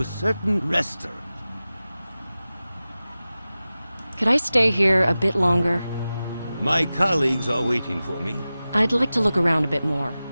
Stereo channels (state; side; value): inverted; both; correlation -0.95